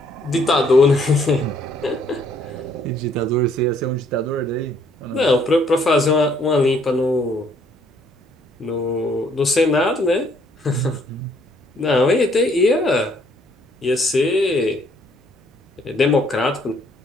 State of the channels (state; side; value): normal; both; correlation 0.66